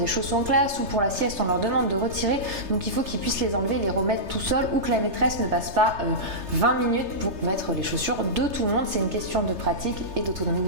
chaussons en classe ou pour la sieste, on leur demande de retirer. Donc, il faut qu'ils puissent les enlever, les remettre tout seuls ou que la maîtresse ne passe pas 20 minutes pour mettre les chaussures de tout le monde. C'est une question de pratique et d'autonomie de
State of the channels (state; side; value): late; left; 3.3 ms